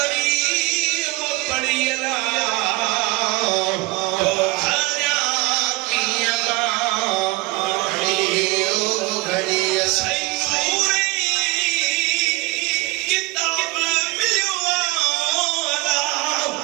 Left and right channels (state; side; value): quieter; left; 22.6 dB